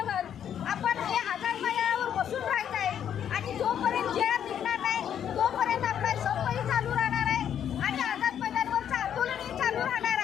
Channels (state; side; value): quieter; right; 9.3 dB